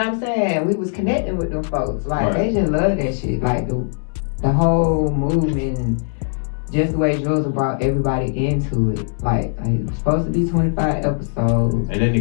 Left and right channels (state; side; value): silent; right; 63 dB below the other